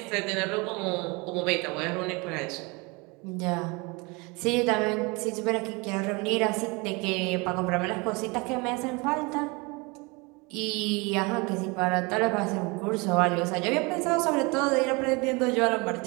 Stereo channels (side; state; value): left; quieter; 27.5 dB